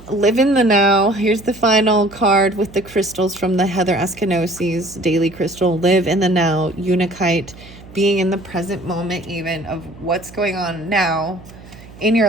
live in the now. Here's the final card with the crystals from the Heather Askanosi's daily crystal. Live in the now, Unikite, being in the present moment even of what's going on now in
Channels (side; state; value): right; noise; hum, 20 dB below the sound